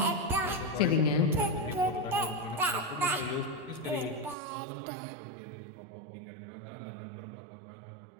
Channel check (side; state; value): left; drops out; at 4.4 s